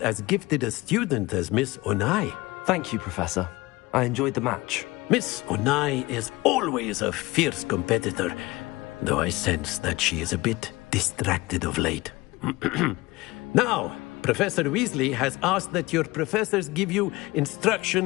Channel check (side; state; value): right; quieter; 21.1 dB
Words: as gifted a student as Miss Onai. Thank you, Professor. I enjoyed the match. Miss Onai is always a fierce competitor, though I sense that she is a bit distracted of late. Now, Professor Weasley has asked that your professors give you